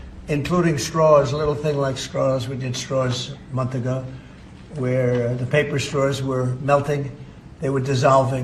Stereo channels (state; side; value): identical; both; correlation 1.00